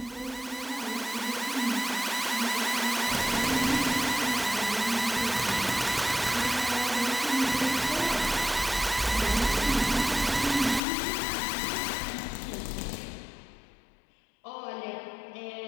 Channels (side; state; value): right; drops out; at 10.8 s